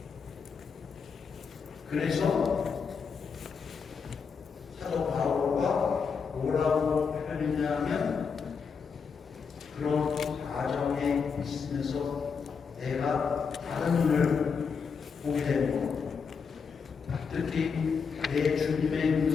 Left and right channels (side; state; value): right; quieter; 5.8 dB